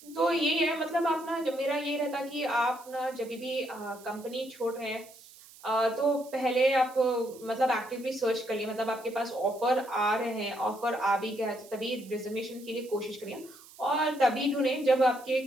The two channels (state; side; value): noise; right; hiss, 21 dB below the sound